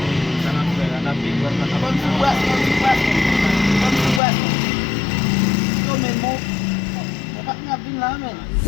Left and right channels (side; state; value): right; drops out; at 4.2 s